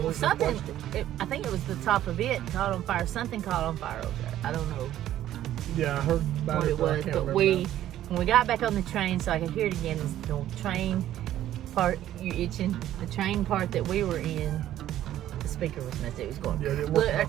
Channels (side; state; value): left; quieter; 12.6 dB